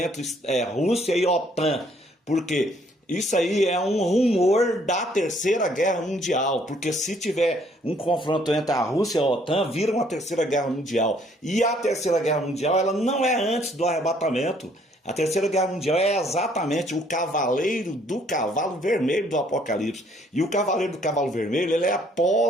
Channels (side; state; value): both; normal; correlation 0.64